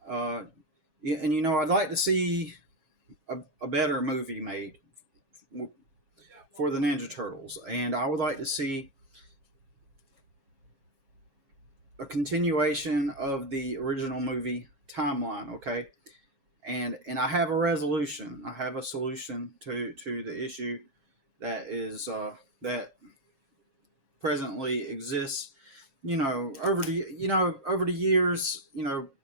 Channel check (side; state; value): left; late; 7.3 ms